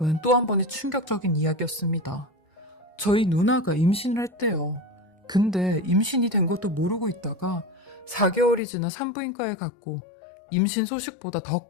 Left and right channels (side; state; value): right; drops out; at 8.6 s